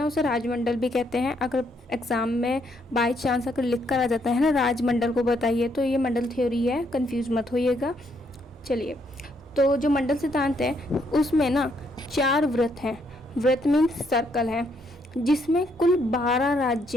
उसे राजमंडल भी कहते हैं। अगर एग्ज़ाम में बाई चांस अगर लिख कर आ जाता है ना राजमंडल को बताइए, तो ये मंडल थ्योरी है, कंफ्यूज मत होइएगा। चलिए, तो जो मंडल सिद्धांत है उसमें ना 4 वृत्त हैं। वृत्त मीन्स सर्कल है, जिसमें कुल 12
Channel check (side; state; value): both; normal; correlation 0.73